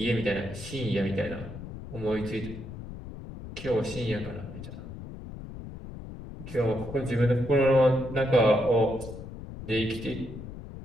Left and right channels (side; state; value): left; noise; rumble, 11 dB below the sound